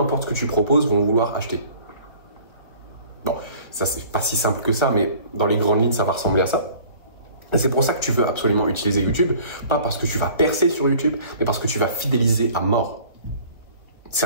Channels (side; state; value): right; late; 1.5 ms